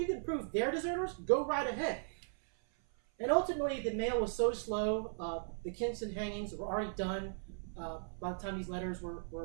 can prove they're deserters, go right ahead. And ultimately, the mail was so slow, the Kinston hangings were already done by the time these letters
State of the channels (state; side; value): silent; left; 53 dB below the other